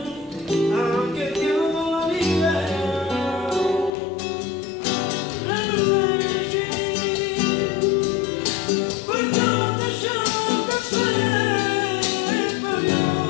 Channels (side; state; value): right; drops out; at 3.9 s